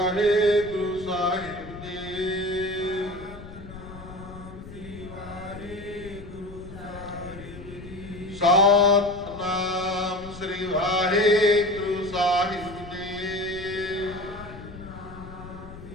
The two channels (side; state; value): left; noise; rumble, 14 dB below the sound